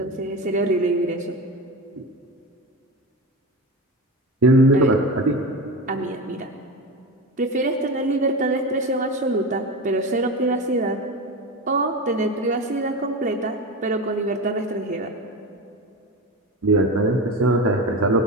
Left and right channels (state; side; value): normal; both; correlation 0.24